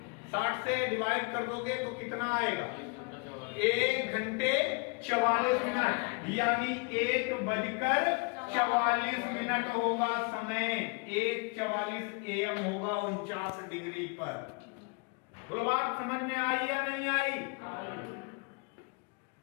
60 से डिवाइड कर दोगे तो कितना आएगा? 1 घंटे 44 मिनट, यानी 1:44 होगा समय। 1:44 AM होगा 49 डिग्री पर। बोलो बात समझ में आई या नहीं आई?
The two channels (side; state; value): right; quieter; 33.2 dB